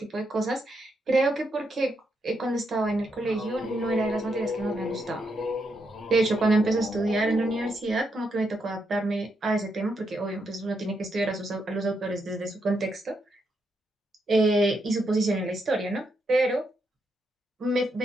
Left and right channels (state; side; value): normal; both; correlation 0.80